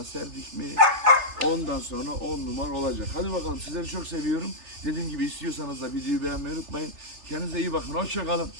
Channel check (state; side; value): late; left; 3.3 ms